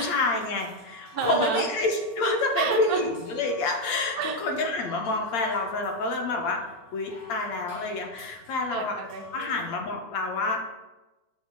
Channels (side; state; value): right; late; 8.7 ms